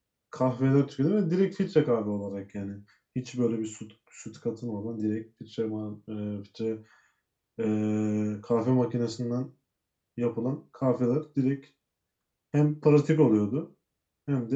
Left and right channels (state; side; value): identical; both; correlation 1.00